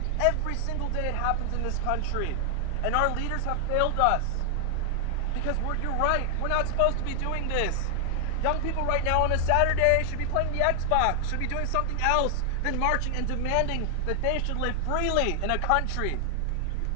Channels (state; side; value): different; both; correlation 0.00